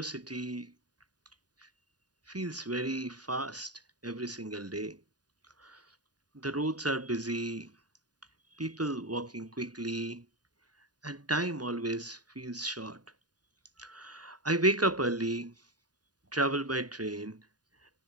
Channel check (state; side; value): late; left; 0.69 ms